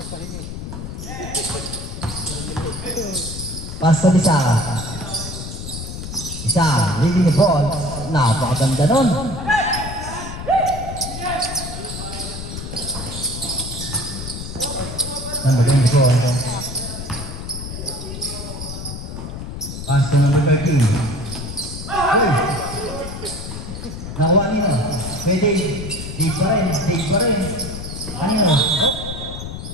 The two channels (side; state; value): left; noise; rumble, 8 dB below the sound